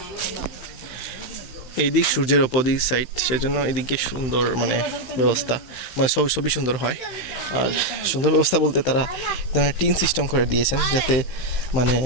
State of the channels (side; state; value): right; late; 16 ms